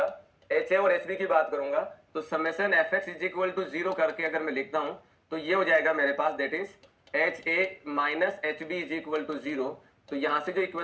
एच ए और एच बी की बात करूंगा, तो summation F X is equal to 0 करके अगर मैं लिखता हूं तो ये हो जाएगा मेरे पास, that is H A minus H B is equal to 0। तो यहां से जो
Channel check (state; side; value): identical; both; correlation 1.00